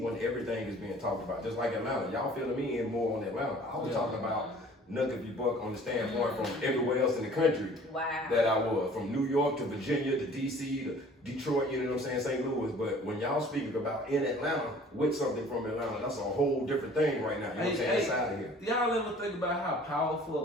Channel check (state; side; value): normal; both; correlation 0.50